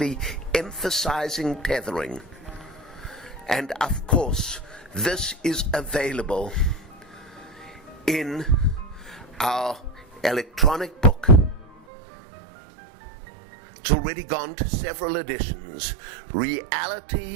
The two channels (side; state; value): left; drops out; at 11.8 s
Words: emphasizing tethering. And of course, this is available in our electronic book. It's already gone to several editions.